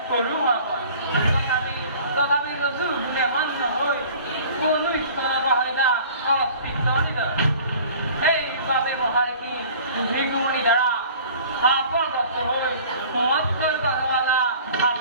কৰোঁ তথাপি যোনে মান্য হৈ কোনো ঈশ্বৰবাহিতা অস্তিত্ব নিদৰ সেইবাবে মহাৰিষি ভিগুমণি দ্বাৰা শাপগ্ৰস্ত হৈ মৎস্য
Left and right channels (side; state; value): both; inverted; correlation -0.46